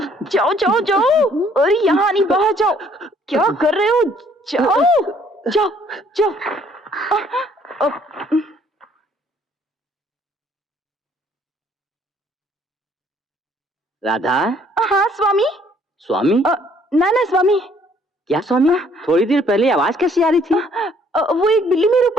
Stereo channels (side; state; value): both; normal; correlation 0.62